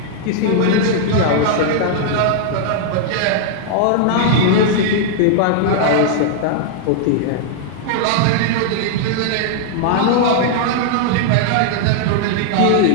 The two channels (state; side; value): different; both; correlation -0.01